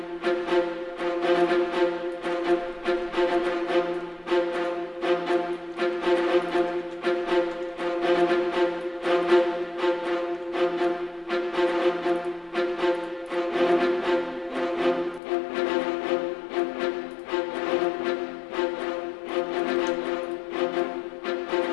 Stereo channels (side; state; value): right; drops out; at 15.2 s